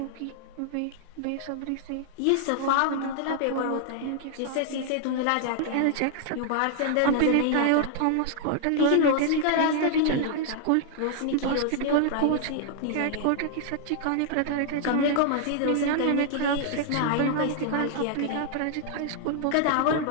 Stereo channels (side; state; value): both; different; correlation 0.00